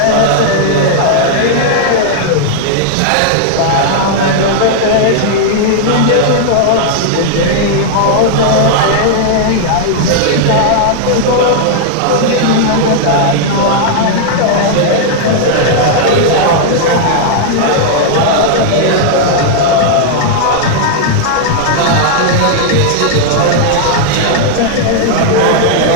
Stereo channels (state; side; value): different; both; correlation -0.01